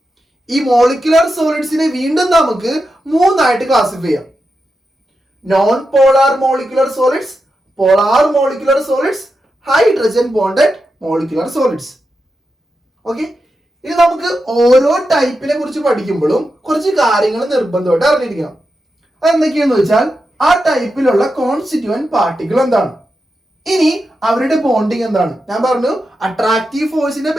ഈ മോളിക്കുലാർ സോളിഡ്സിനെ വീണ്ടും നമുക്ക് 3ആയിട്ട് ക്ലാസിഫൈ ചെയ്യാം. Non polar molecular solids, polar molecular solids, hydrogen bonded molecular solids. Okay, ഇനി നമുക്ക് ഓരോ ടൈപ്പിനെ കുറിച്ച് പഠിക്കുമ്പോഴും കുറച്ച് കാര്യങ്ങൾ നിർബന്ധമായിട്ട് അറിഞ്ഞിരിക്കണം. അതെന്തൊക്കെയാണെന്ന് വെച്ചാൽ ആ ടൈപ്പിലുള്ള കോൺസ്റ്റിറ്റ്യൂവന്റ് പാർട്ടിക്കിൾ എന്താണ്, ഇനി അവരുടെ ബോണ്ടിങ് എന്താണ്. ഞാൻ പറഞ്ഞു അട്രാക്റ്റീവ് ഫോഴ്സിന്റെ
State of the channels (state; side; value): normal; both; correlation 0.88